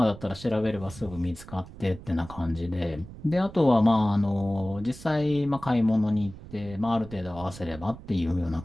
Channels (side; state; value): right; noise; rumble, 16 dB below the sound